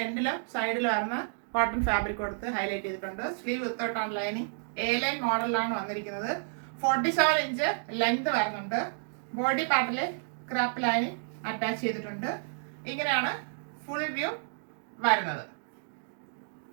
എൻഡിലും സൈഡിലും വരുന്ന കോട്ടൺ ഫാബ്രിക് കൊടുത്ത് ഹൈലൈറ്റ് ചെയ്തിട്ടുണ്ട്. സ്ലീവ് വിത്തൗട്ടാണ് ലൈനിങ്. എ ലൈൻ മോഡലിലാണ് വന്നിരിക്കുന്നത്. 47 ഇഞ്ച് ലെങ്ത് വരുന്നുണ്ട്. ബോഡി പാർട്ടിൽ ക്രാപ്പ് ലൈനിങ് അറ്റാച്ച് ചെയ്തിട്ടുണ്ട്. ഇങ്ങനെയാണ് ഫുൾ വ്യൂ വരുന്നത്.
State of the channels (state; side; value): silent; left; digital silence